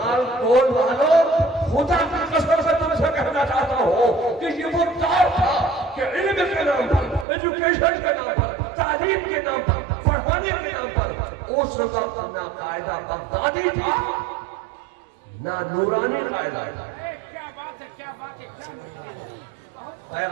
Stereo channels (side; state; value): left; drops out; at 7.2 s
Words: کول والوں، خدا کی قسم سے تم سے کہنا چاہتا ہوں کہ یہ وہ دور تھا کہ علم کے نام پر، ایجوکیشن کے نام پر، تعلیم کے نام پر، پڑھانے کے نام پر، اس وقت نہ قاعدہ بغدادی تھا، نہ نورانی قاعدہ تھا۔